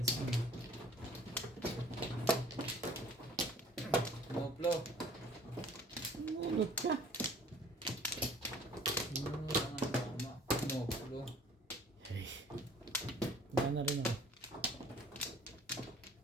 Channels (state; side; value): normal; both; correlation 0.51